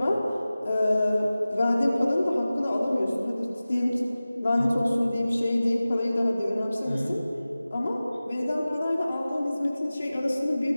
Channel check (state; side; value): inverted; both; correlation -0.97